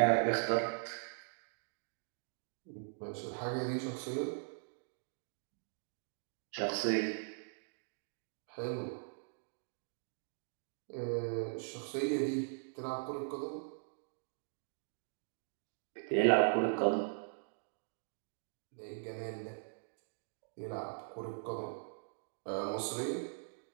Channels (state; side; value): silent; left; digital silence